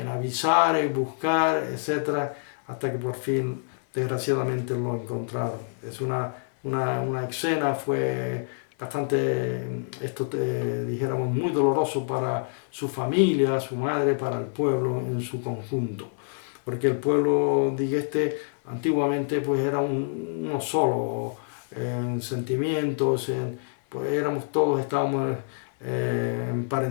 avisar, en buscar, etcétera, hasta que por fin, desgraciadamente, lo encontraron. Es una escena, fue bastante, dijéramos, muy doloroso para su familia, su madre, para el pueblo en su conjunto. Porque el pueblo, antiguamente, pues era uno solo, en sentimientos, pues estábamos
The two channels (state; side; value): silent; right; 60 dB below the other